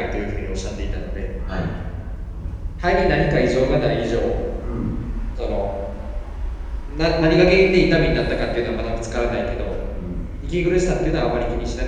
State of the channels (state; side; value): identical; both; correlation 1.00